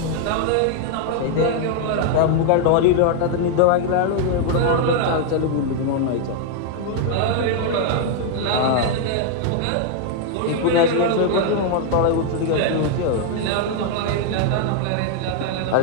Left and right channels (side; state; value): both; different; correlation 0.00